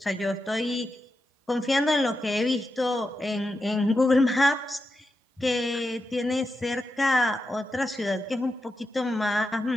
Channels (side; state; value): both; normal; correlation 0.88